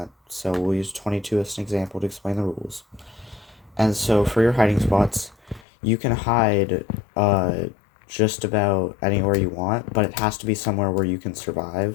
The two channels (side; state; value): right; drops out; at 5.7 s